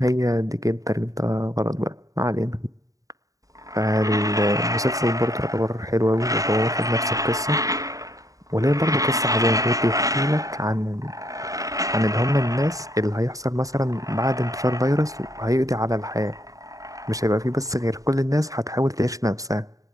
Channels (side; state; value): left; late; 0.16 ms